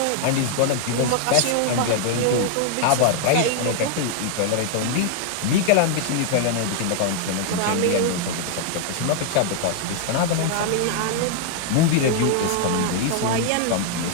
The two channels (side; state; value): both; different; correlation 0.00